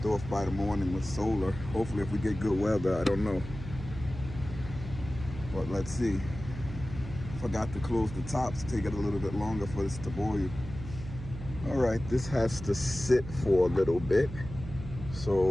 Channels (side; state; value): right; noise; hum, 11 dB below the sound